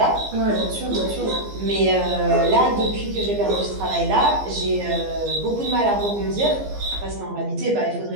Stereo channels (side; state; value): left; late; 15 ms